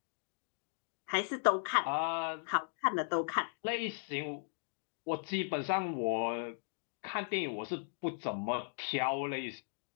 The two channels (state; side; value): silent; right; digital silence